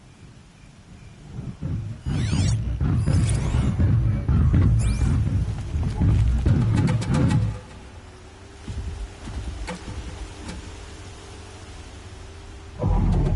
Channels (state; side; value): identical; both; correlation 1.00